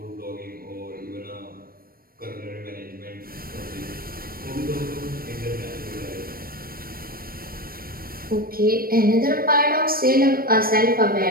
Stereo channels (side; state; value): left; late; 0.43 ms